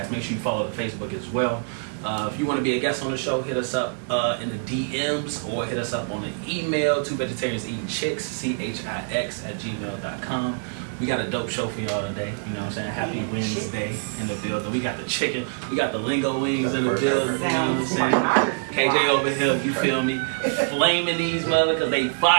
Make sure you follow the Facebook as well. If you want to be a guest on the show, hit us up in the DMs or hit us up on the email, 2VegetariansEatingChicks, CHIX@gmail.com. We got a dope show for y'all today. You know what I'm saying? Happy Wednesday in the building. We got the chicken. We got the lingo wings in the building. You know what I'm saying? KJ over here, you feel me? Flaming these mother because they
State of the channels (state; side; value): silent; left; 62 dB below the other